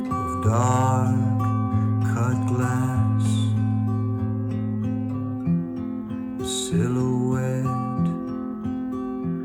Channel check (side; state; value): both; identical; correlation 1.00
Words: of dark cut glass, the silhouette